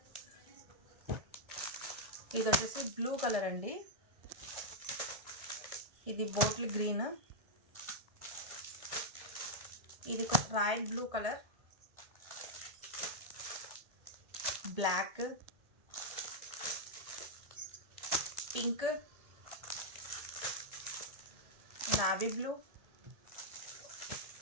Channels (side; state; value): left; late; 1.7 ms